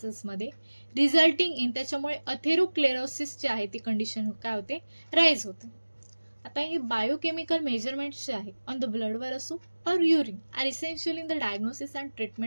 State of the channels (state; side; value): inverted; both; correlation -1.00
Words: मध्ये resulting in, त्याच्यामुळे atherosclerosis जे आहे ती कंडिशन काय होते, राईज होते. आता हे बायोकेमिकल मेजरमेंट्स जे आहे ऑन द ब्लडवर असो और urine are essential in the diagnosis and